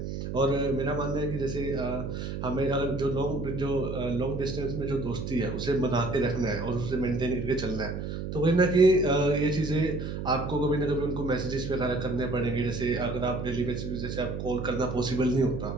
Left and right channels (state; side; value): noise; right; hum, 5 dB below the sound